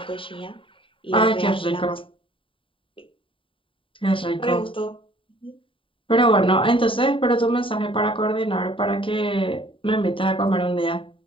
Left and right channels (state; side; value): late; right; 0.25 ms